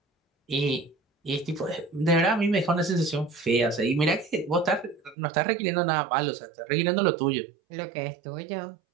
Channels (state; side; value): drops out; left; at 5.2 s